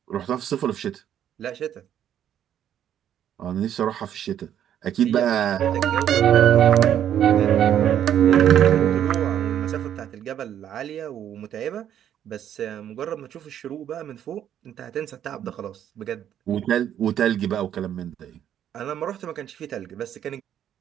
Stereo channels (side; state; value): left; quieter; 10.2 dB